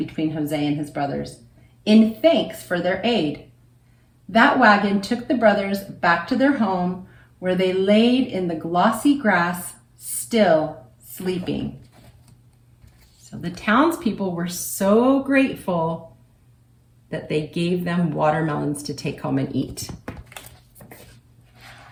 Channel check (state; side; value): identical; both; correlation 1.00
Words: Jose and his brothers in thanks for their aid. That wagon took the brothers back to their home, where they laid in the glossy grass, still sleeping. So the townspeople were so grateful that they gave them watermelons to take home and eat.